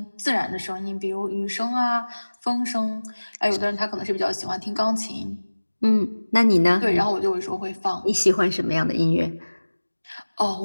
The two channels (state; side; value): inverted; both; correlation -1.00